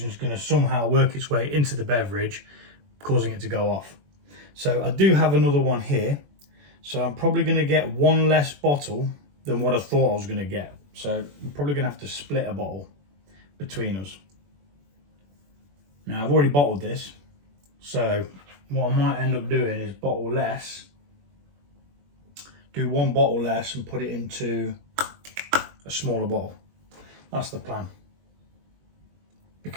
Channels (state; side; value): late; left; 21 ms